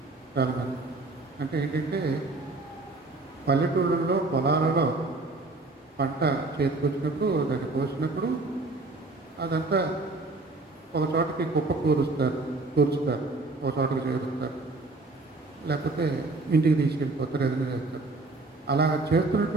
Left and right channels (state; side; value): quieter; left; 3.3 dB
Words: చాలా మంది. అంటే ఏంటంటే పల్లెటూళ్ళల్లో పొలాలలో పంట చేతికొచ్చినప్పుడు దాన్ని కోసినప్పుడు అదంతా ఒక చోటకి కుప్ప కూర్చుతారు, ఒక చోటకి చేరుస్తారు, లేకపోతే ఇంటికి తీసుకెళ్ళిపోతారు, ఏదైనా చేస్తారు. అలా